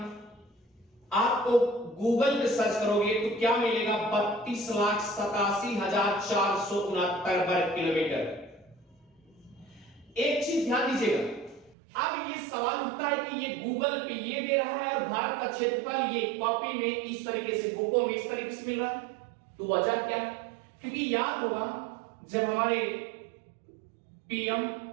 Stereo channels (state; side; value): drops out; left; at 11.8 s